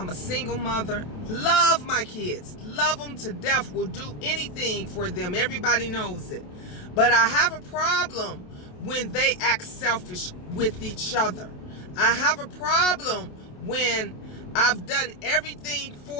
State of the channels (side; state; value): right; late; 28 ms